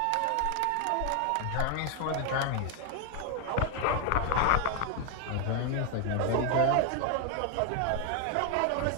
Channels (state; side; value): different; both; correlation 0.00